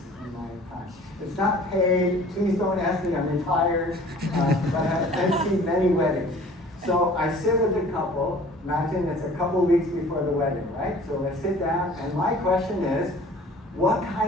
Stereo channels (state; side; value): normal; both; correlation 0.49